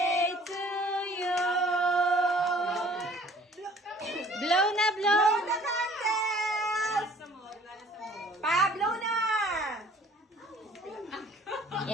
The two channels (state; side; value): normal; both; correlation 0.53